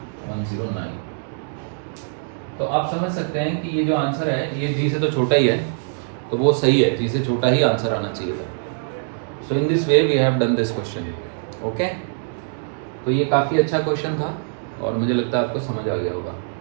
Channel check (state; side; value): silent; left; digital silence